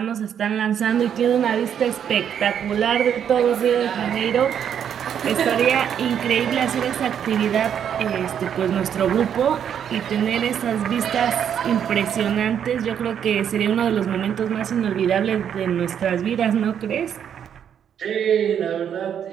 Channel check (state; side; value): quieter; left; 8.7 dB